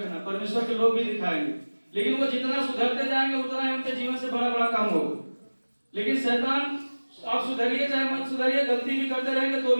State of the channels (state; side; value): inverted; both; correlation -1.00